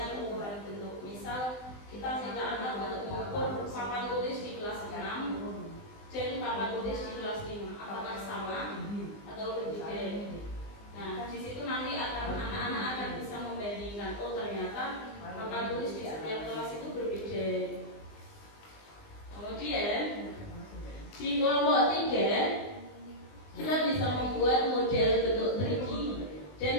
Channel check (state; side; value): late; right; 20 ms